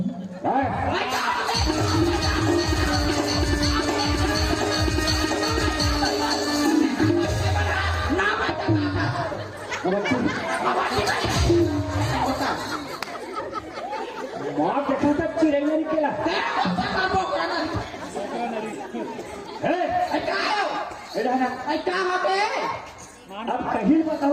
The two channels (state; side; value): identical; both; correlation 1.00